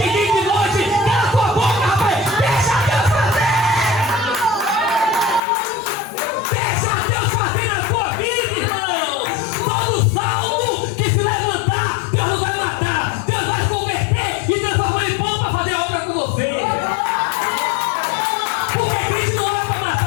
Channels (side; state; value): right; drops out; at 5.4 s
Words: e de noite. Cala a tua boca, rapaz! Deixa Deus fazer! Deixa Deus fazer na tua vida, irmão! Todo salmo que se levantar, Deus não vai matar, Deus vai converter e transformar em pão para fazer a obra com você. Porque Cristo não é para